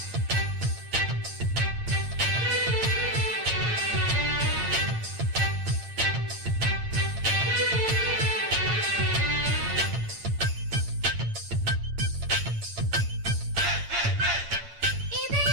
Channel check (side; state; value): left; late; 8.8 ms